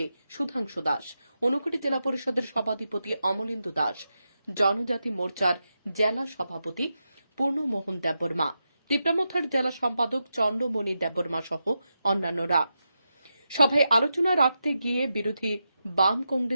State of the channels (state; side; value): inverted; both; correlation -0.88